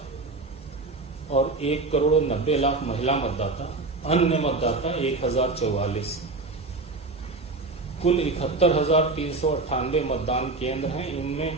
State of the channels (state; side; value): quieter; left; 3.5 dB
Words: और 1,90,00,000 महिला मतदाता, अन्य मतदाता 1,044। कुल 71,398 मतदान केंद्र हैं। इनमें